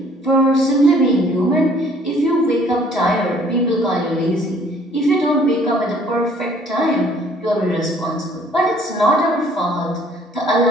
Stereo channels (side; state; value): both; normal; correlation 0.58